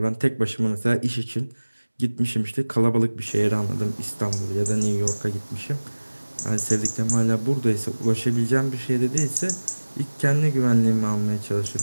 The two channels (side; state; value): both; inverted; correlation -1.00